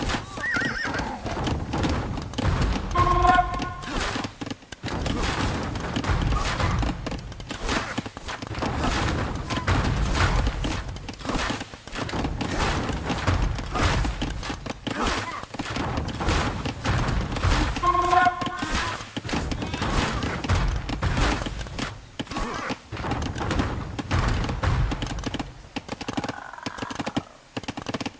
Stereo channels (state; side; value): identical; both; correlation 1.00